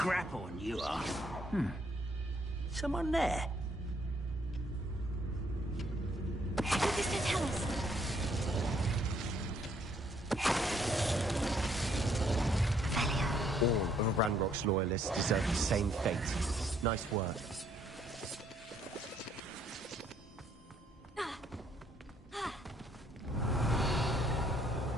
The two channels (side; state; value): both; normal; correlation 0.68